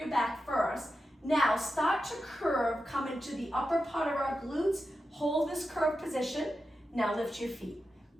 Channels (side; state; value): both; normal; correlation 0.90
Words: back first. Now start to curve. Come into the upper part of our glutes. Hold this curved position. Now lift your feet.